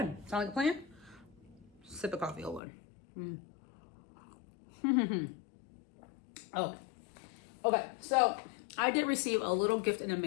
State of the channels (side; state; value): right; drops out; at 2.6 s